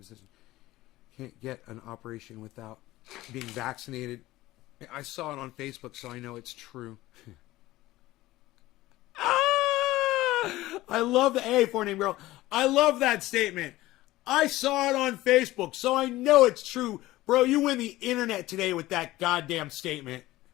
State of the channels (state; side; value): quieter; right; 17.3 dB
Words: decision. Can't get an operation without being vaccinated. I saw it on Facebook, so I know it's true. I love the A for name girl. I love that statement. I saw it on Facebook, so I know it's true. Bro, you win the internet today with that goddamn statement.